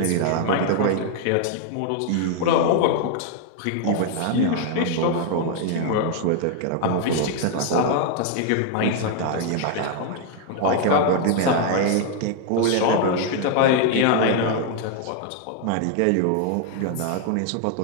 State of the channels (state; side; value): different; both; correlation 0.00